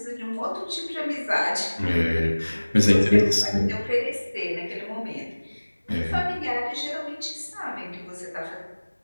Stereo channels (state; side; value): inverted; both; correlation -1.00